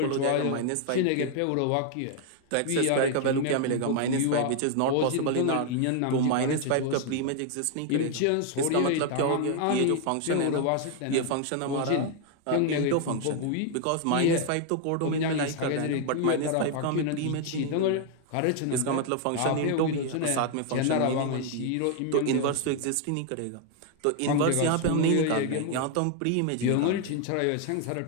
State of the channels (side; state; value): both; different; correlation 0.00